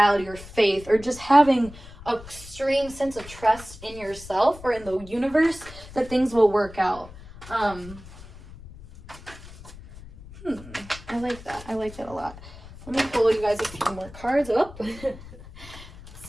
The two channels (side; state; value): left; noise; rumble, 17 dB below the sound